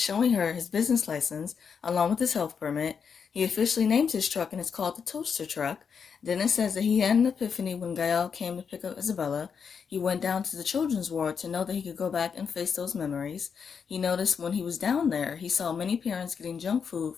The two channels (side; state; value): right; quieter; 6.5 dB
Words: her his business license along with his health permit. He officially named his truck, and it's called the Toaster Truck. Dennis says that he had an epiphany when Gael came to pick up Isabella. He went down to the children's ward to know that he could go back and face those memories. He noticed when he was down there, he saw many parents getting junk food